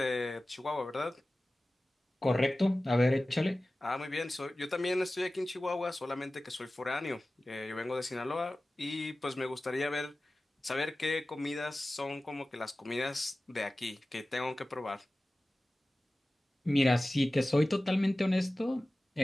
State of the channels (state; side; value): normal; both; correlation 0.97